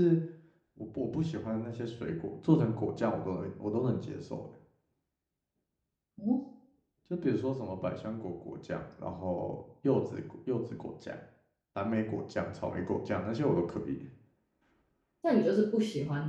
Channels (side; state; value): both; identical; correlation 1.00